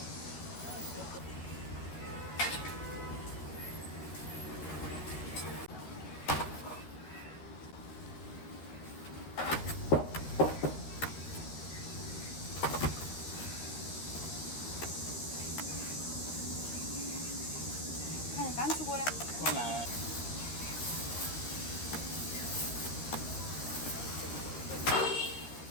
刚出锅的。过来。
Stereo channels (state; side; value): late; right; 13 ms